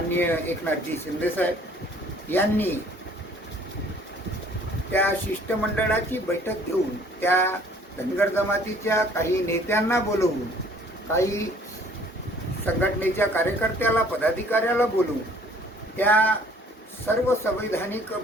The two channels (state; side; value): normal; both; correlation 0.56